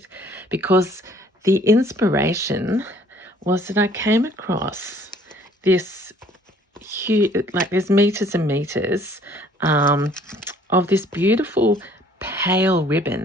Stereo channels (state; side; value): normal; both; correlation 0.58